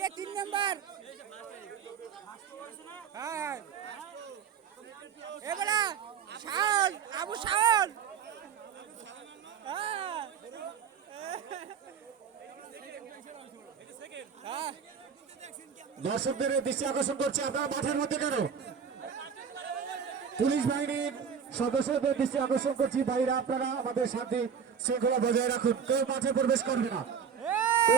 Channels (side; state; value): left; quieter; 7.1 dB